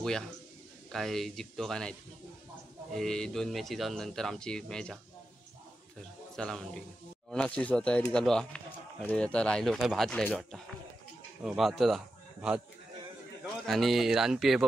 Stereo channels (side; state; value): both; normal; correlation 0.90